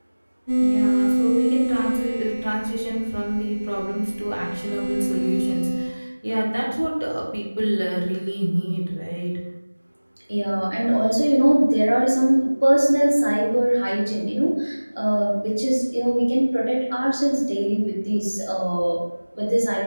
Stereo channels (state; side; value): inverted; both; correlation -1.00